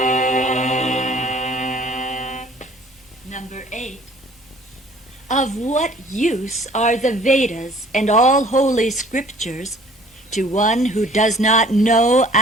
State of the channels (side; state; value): both; normal; correlation 0.54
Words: Number 8. Of what use are the Vedas and all holy scriptures to one who does not know